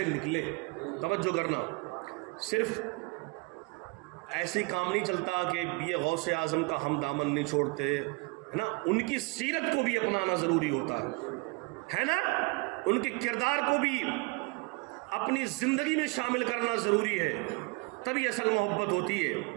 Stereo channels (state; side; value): quieter; left; 27.7 dB